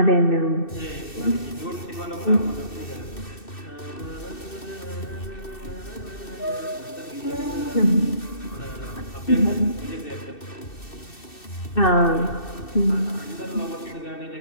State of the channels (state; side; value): late; right; 2.6 ms